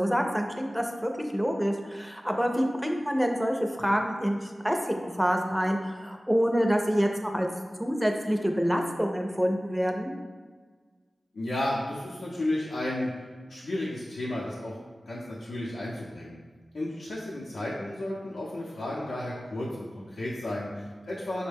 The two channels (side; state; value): both; normal; correlation 0.97